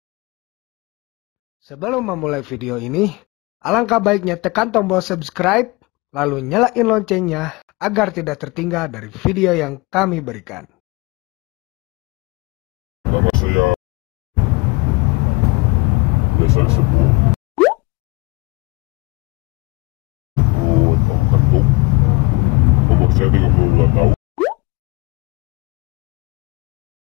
Sebelum memulai video ini, alangkah baiknya tekan tombol subscribe, lalu nyalain loncengnya agar tidak tertinggal dari video yang kami berikan. Nama saya biasa disebut Tom Kentung. Umur saya 32 tahun.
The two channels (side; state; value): right; quieter; 25.1 dB